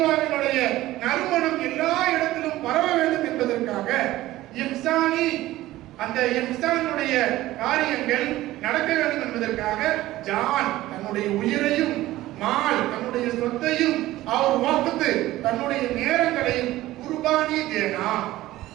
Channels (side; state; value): left; quieter; 16.2 dB